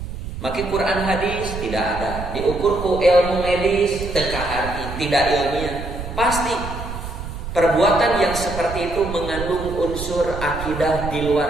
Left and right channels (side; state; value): right; noise; rumble, 8 dB below the sound